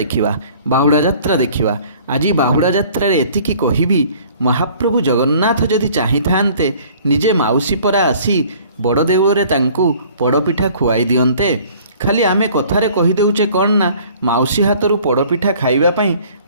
बाहुड़ा यात्रा देखा। आज बाहुड़ा यात्रा एतिकी कहबी महाप्रभु जगन्नाथ जदि चाही थांते निजे माउसी परा आसी बड़ देउଳରେ तांकु पड़पिठा खुआई दियंते। खाली आमे कथारे कहीदेचे कौन ना माउसी हाथरू पड़पिठा खाइबापी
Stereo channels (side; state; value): both; inverted; correlation -0.52